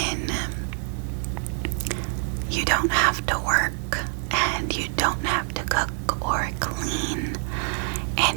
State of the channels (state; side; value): silent; left; 57 dB below the other